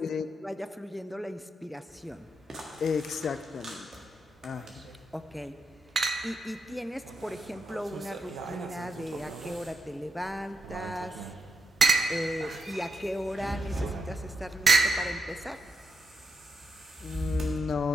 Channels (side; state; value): both; normal; correlation 0.81